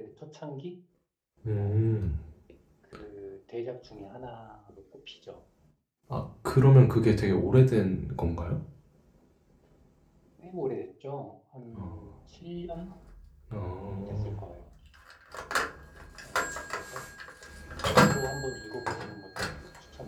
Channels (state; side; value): identical; both; correlation 1.00